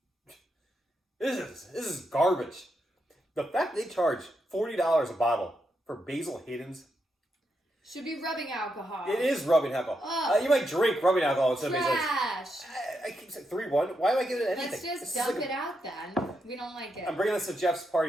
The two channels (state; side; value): normal; both; correlation 0.83